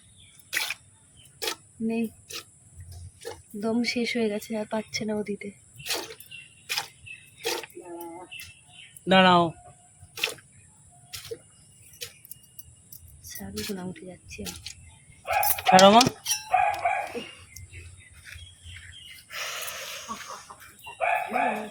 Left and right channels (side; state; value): both; identical; correlation 1.00